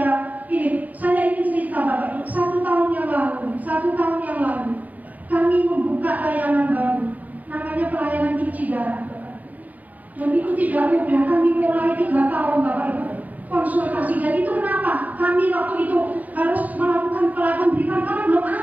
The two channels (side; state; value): left; late; 0.076 ms